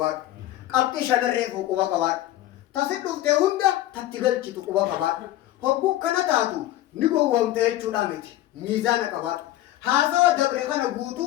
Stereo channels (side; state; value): right; quieter; 14.5 dB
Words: قبتي شنريفو قوة كبار تسدو تهوندا تتقل كتو قوة كبار هبو كنا تاتو نيكو وامتي چودامت ميزان كبار هاسوا دبرخنا